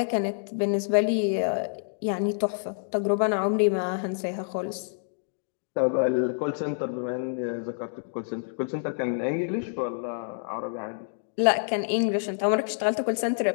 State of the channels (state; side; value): silent; right; digital silence